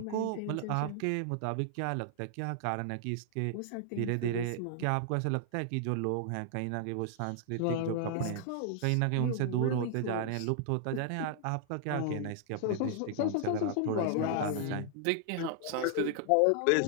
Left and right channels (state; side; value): different; both; correlation 0.00